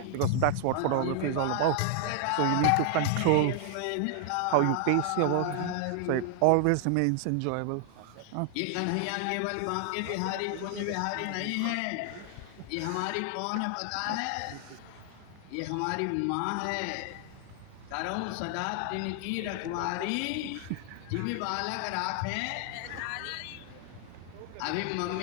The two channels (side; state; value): both; different; correlation 0.00